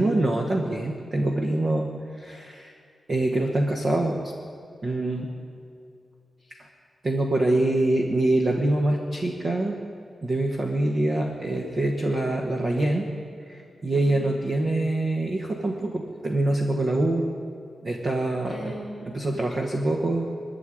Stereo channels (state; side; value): normal; both; correlation 0.92